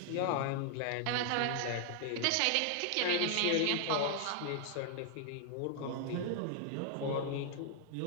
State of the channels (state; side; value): different; both; correlation 0.00